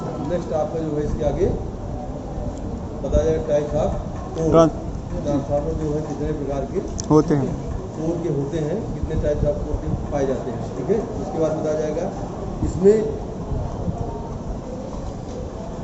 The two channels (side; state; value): both; identical; correlation 1.00